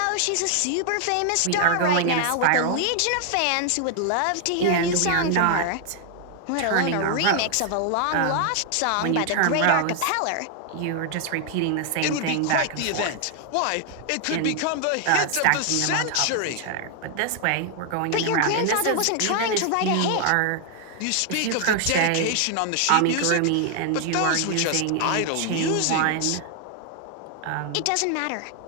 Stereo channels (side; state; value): both; different; correlation 0.00